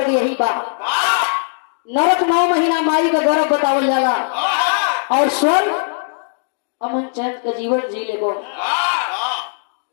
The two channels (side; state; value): right; silent; digital silence